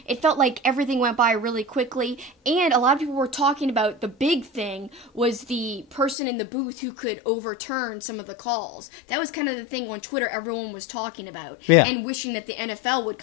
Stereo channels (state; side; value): drops out; right; at 6.2 s